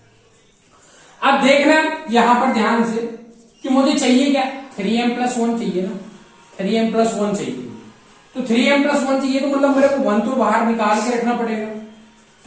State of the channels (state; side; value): identical; both; correlation 1.00